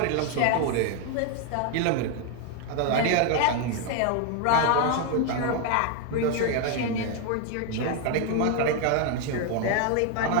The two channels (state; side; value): different; both; correlation 0.01